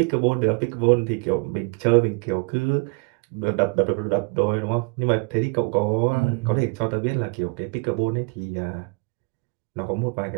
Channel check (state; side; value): quieter; left; 32.8 dB